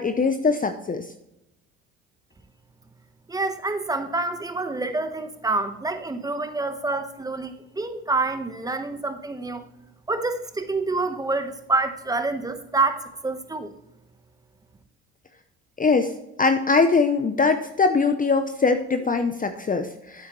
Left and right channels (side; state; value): both; normal; correlation 0.31